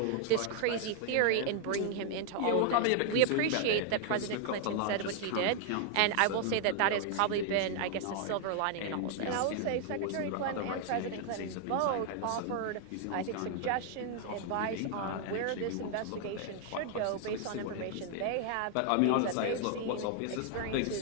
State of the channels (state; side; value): different; both; correlation 0.00